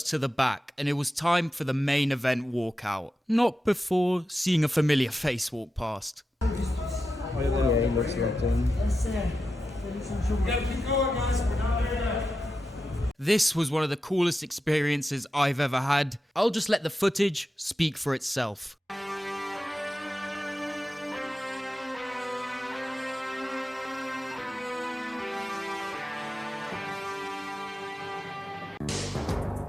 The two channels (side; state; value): both; normal; correlation 0.90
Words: to the back, and it was time for the main event walkout. Not before seeing a familiar face walk past. Yeah, he looks locked in. This was one of the coolest experiences I've ever had. I'll just let the footage speak for itself.